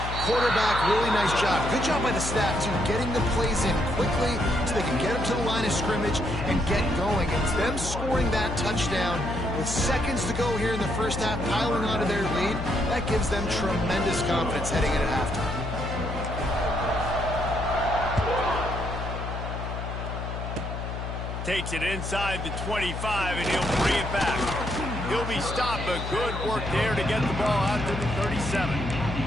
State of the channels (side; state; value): left; noise; hum, 6 dB below the sound